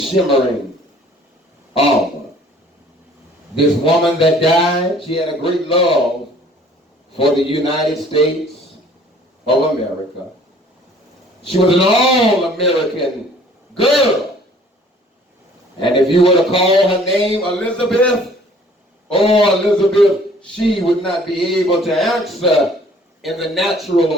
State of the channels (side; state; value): both; normal; correlation 0.54